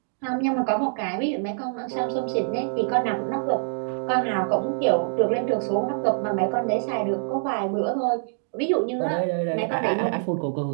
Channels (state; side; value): silent; left; digital silence